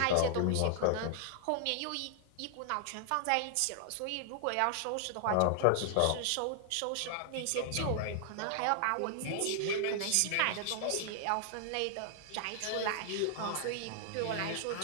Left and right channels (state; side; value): different; both; correlation 0.00